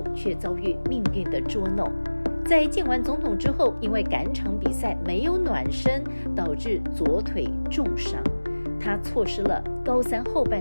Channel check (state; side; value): inverted; both; correlation -1.00